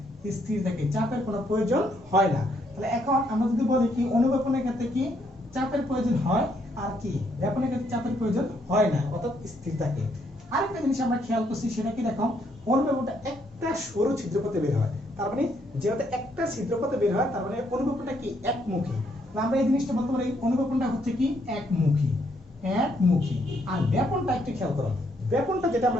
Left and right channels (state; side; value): normal; both; correlation 0.72